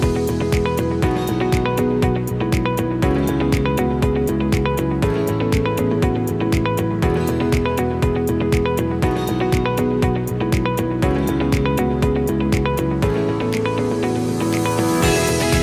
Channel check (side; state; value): both; identical; correlation 1.00